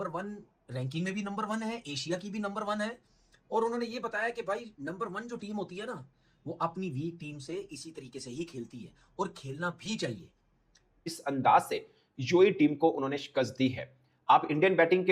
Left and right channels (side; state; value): both; identical; correlation 1.00